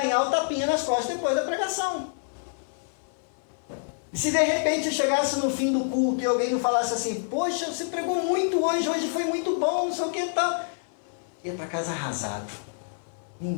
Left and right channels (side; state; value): right; silent; 56 dB below the other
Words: o tapinha nas costas depois da pregação. E se de repente eu chegasse no fim do culto e alguém me falasse assim, poxa, você pregou muito hoje foi muito bom, não sei o que e tal. Eu ia para casa arrasado.